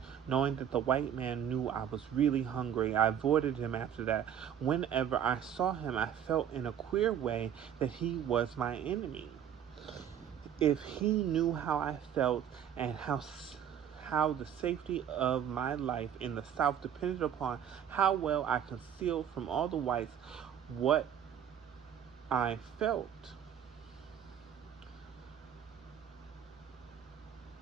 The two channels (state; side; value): quieter; left; 9.2 dB